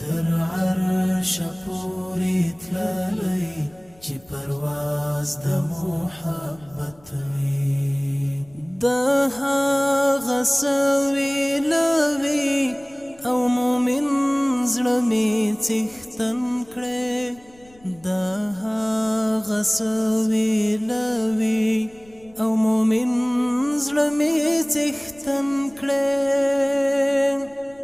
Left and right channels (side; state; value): left; noise; rumble, 28 dB below the sound